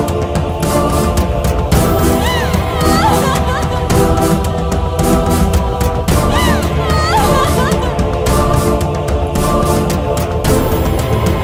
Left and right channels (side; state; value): both; identical; correlation 1.00